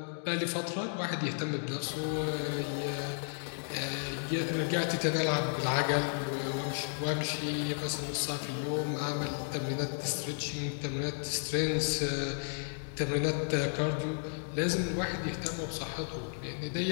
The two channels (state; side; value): silent; right; digital silence